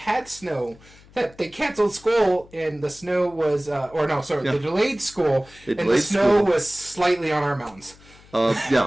snow. They canceled school, and the snow was... They delayed school, and the snow was slightly on our mountains.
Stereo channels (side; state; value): left; noise; hum, 25 dB below the sound